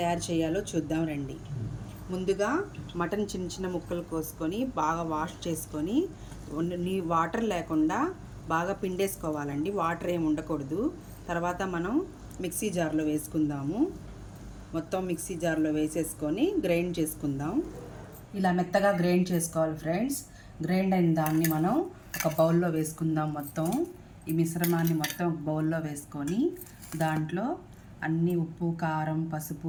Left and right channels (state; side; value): identical; both; correlation 1.00